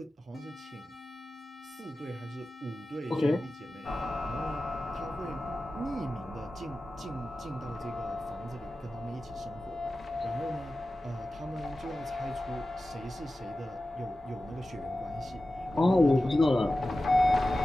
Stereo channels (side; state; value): both; normal; correlation 0.94